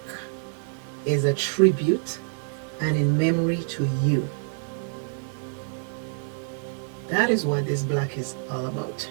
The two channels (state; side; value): silent; left; 61 dB below the other